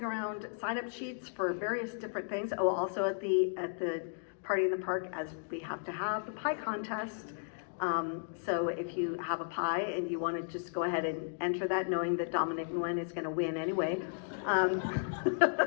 around sign-up sheets for various different things. Oh, also at the Party in the Park, as we have to have the pie contest. So if you have a pie and you want to just go ahead and enter that, knowing that Dominic Nguyen is going to win anyway.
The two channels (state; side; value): silent; right; digital silence